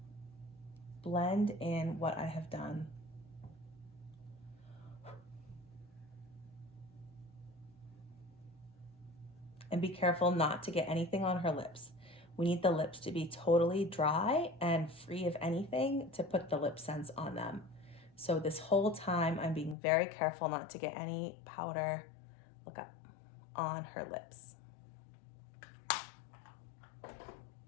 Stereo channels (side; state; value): right; drops out; at 19.8 s